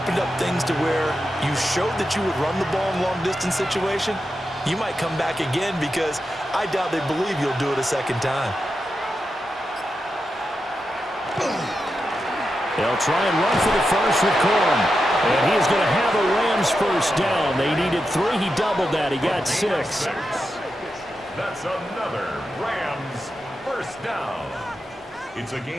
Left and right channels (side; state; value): both; normal; correlation 0.88